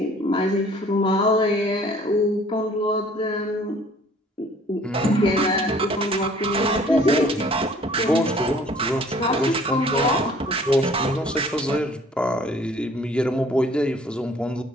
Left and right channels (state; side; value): normal; both; correlation 0.54